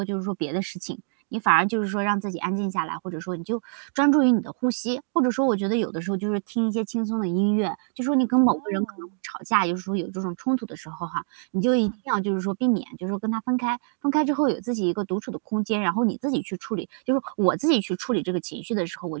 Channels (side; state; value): left; silent; digital silence